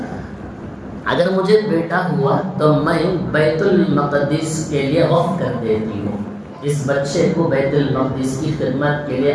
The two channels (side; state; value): both; identical; correlation 1.00